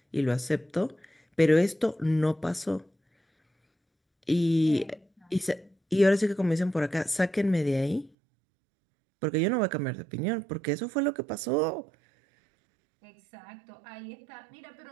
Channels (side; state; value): left; drops out; at 8.1 s